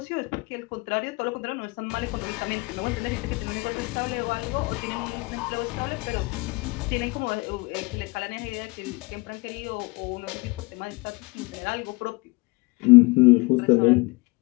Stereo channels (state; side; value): quieter; right; 25.8 dB